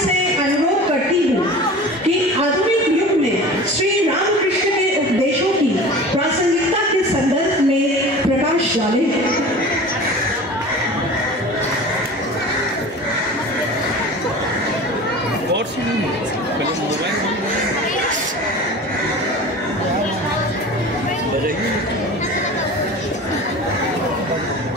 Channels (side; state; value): both; normal; correlation 0.37